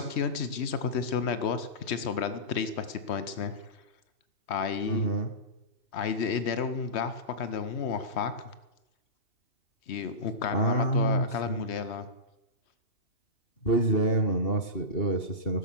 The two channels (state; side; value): late; right; 3.2 ms